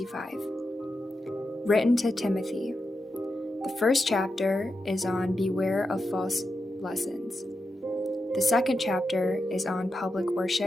Written to Timothy. The first chapter is on Beware of False Lessons. The second chapter is on Public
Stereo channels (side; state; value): both; normal; correlation 0.88